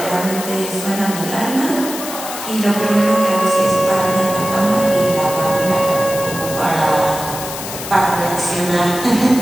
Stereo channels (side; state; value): left; noise; hiss, 9 dB below the sound